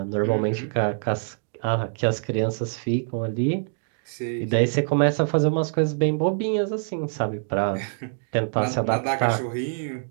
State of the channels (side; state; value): left; silent; digital silence